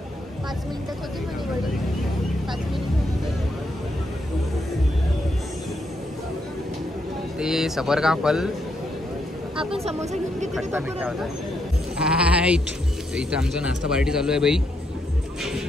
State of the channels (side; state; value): both; normal; correlation 0.78